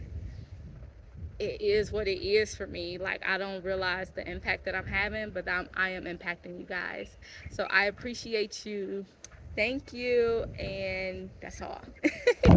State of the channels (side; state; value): both; identical; correlation 1.00